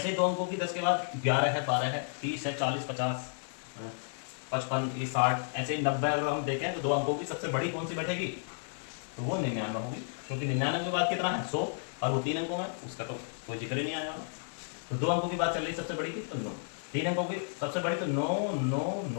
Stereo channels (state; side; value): silent; right; 56 dB below the other